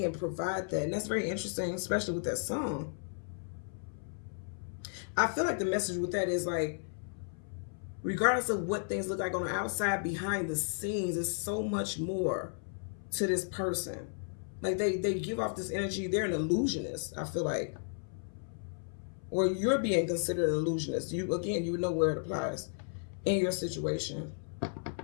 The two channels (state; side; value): silent; right; 55 dB below the other